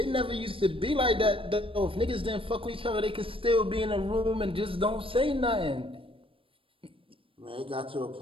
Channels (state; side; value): late; left; 0.26 ms